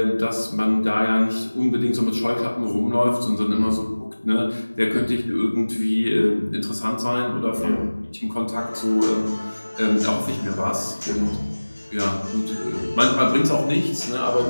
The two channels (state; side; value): inverted; both; correlation -1.00